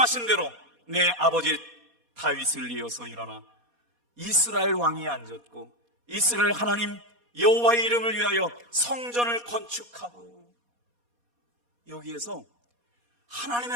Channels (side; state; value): left; late; 4.2 ms